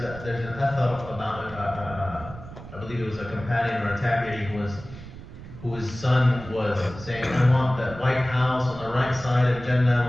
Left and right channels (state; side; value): noise; right; rumble, 14 dB below the sound